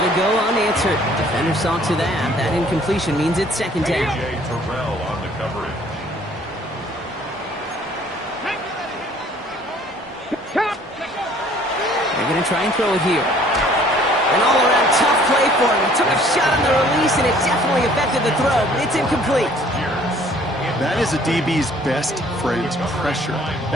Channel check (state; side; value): normal; both; correlation 0.56